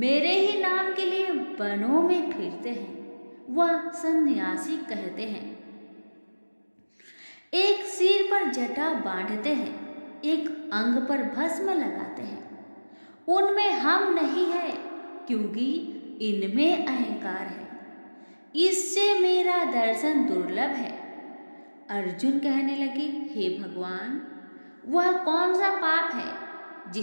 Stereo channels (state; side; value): inverted; both; correlation -1.00